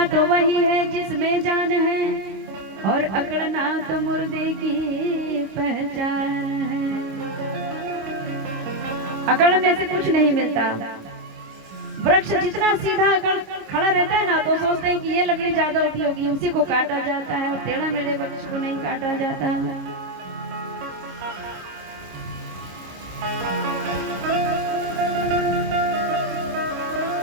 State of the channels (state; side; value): late; left; 26 ms